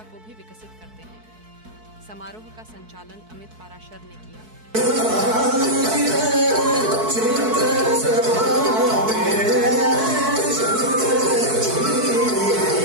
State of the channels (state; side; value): late; left; 4.6 ms